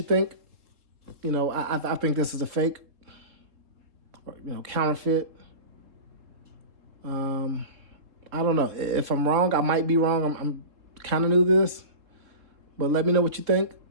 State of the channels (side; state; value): left; late; 3.7 ms